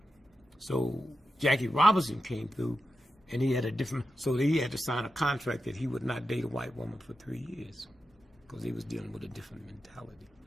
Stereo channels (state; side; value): normal; both; correlation 0.90